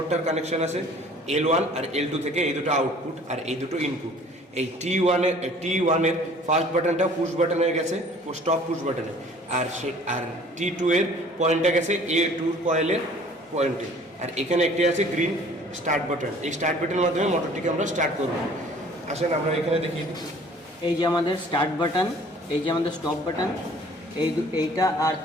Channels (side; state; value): both; normal; correlation 0.52